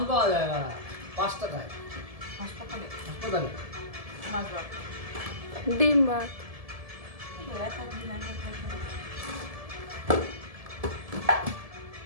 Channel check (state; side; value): late; left; 1.7 ms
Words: পাওয়া যায় না 5 টাকায় হাসপাতালে হাসপাতালে মাছ ভাত ডিম ভাত